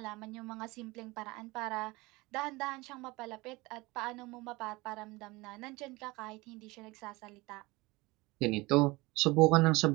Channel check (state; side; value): quieter; left; 22.5 dB